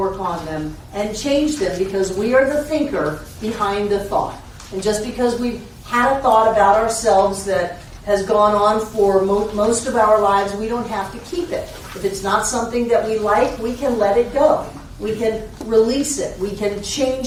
on them, and change them, because we are the thinker behind the thought. And just because we've had a thought about ourselves that has gone on for most of our lives, we don't have to keep it. If it's not something that we like, we can let it go. We can release it. We can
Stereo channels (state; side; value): identical; both; correlation 1.00